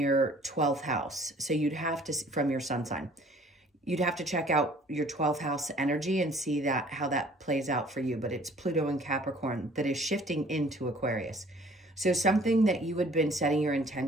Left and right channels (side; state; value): both; normal; correlation 0.54